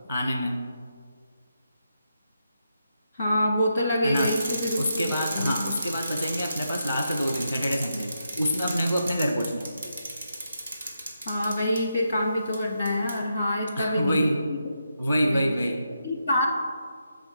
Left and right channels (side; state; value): both; inverted; correlation -0.83